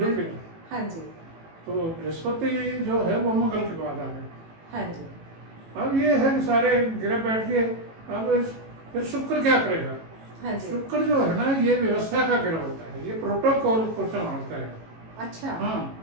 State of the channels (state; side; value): late; left; 18 ms